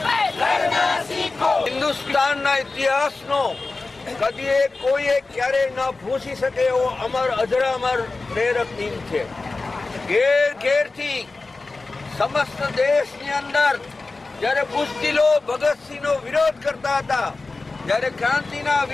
હિન્દુસ્તાનના ઇતિહાસનો કદીએ કોઈએ ક્યારેય ન ભૂસી શકે એવો અમર અજરામર પ્રેરક દિન છે. ઘેર ઘેરથી સમસ્ત દેશની અંદર જ્યારે બુઝદિલો ભગતસિંહનો વિરોધ કરતા હતા, જ્યારે ક્રાંતિના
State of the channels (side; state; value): right; quieter; 3.6 dB